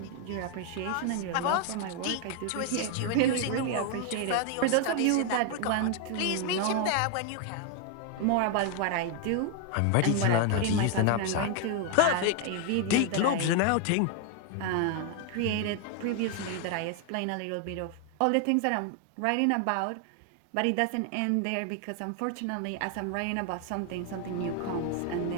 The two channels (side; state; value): both; different; correlation 0.01